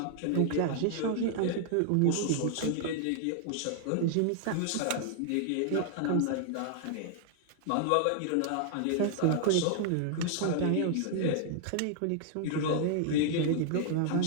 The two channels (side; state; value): both; different; correlation 0.00